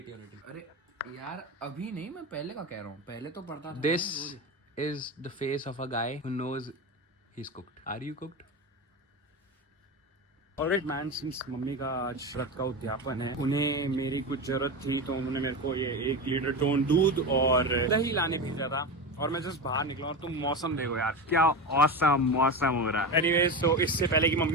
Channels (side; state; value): both; normal; correlation 0.21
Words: और 80। अरे यार अभी नहीं, मैं पहले का कह रहा हूँ, पहले तो पढ़ता था। This is the face of a guy who knows he's cooked. Are you cooked? Alright man, since mummy का आज व्रत का उद्यापन है, उन्हें मेरी कुछ जरूरत थी, तो उन्होंने मेरे को ये 1 लीटर टोन दूध और दही लाने भेजा था। और मैं जस्ट बाहर निकला और तुम मौसम देखो यार, क्या ऑसम मौसम हो रहा है। एनीवेज, तो इससे पहले कि